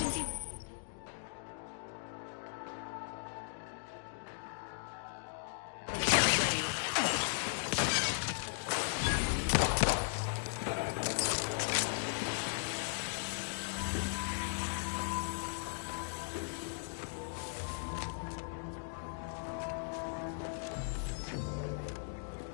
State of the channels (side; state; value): right; silent; digital silence